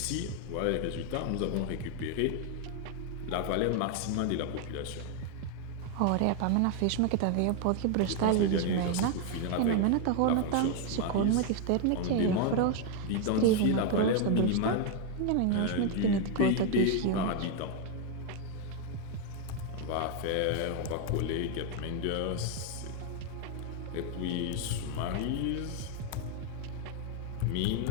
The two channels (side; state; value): both; different; correlation 0.01